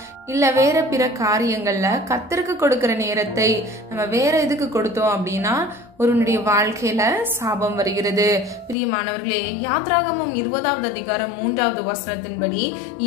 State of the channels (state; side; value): drops out; right; at 8.8 s